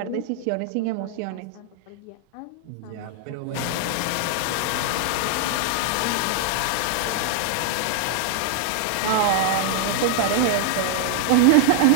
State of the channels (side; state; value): both; different; correlation -0.01